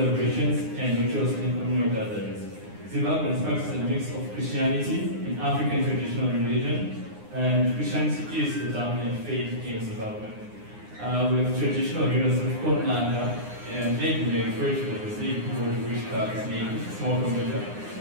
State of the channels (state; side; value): late; left; 9.7 ms